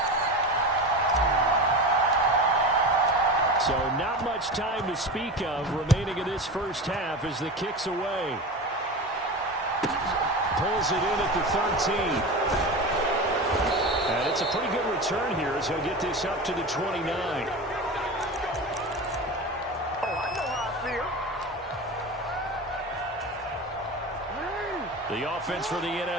So not much time to speak of remaining in this first half as the kick's away. Pulls it in at the 13. And it's a pretty good return here as he'll get this up to the 29. Oh, I know how I feel. The offense for the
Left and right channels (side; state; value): both; normal; correlation 0.27